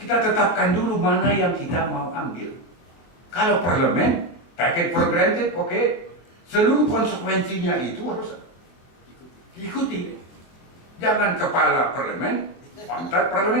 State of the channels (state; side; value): late; right; 24 ms